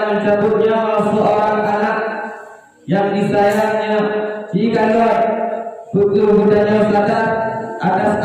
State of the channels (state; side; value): identical; both; correlation 1.00